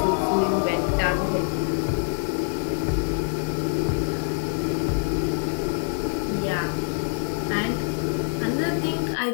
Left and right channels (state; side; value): silent; right; digital silence